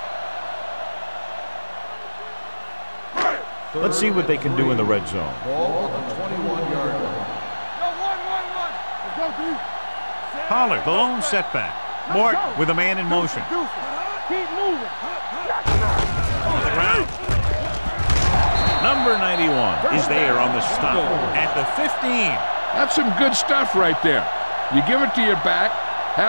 Let's see what they can do in the red zone. Ball on the 21-yard line. Let's go, D. Pollard, the lone setback. Morton with a man in motion. Keep moving. On the ground. Number 91 is there on the stop at the 15. That's some good stuff right there. You give it to your back,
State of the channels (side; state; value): both; inverted; correlation -1.00